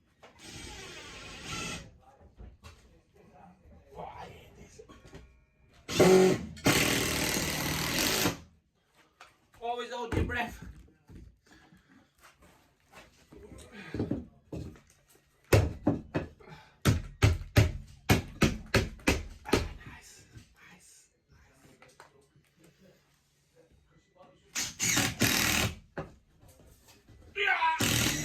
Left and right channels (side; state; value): both; identical; correlation 1.00